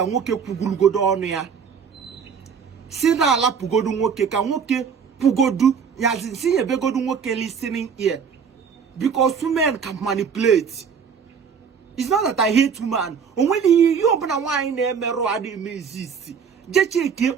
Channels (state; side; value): quieter; left; 6.5 dB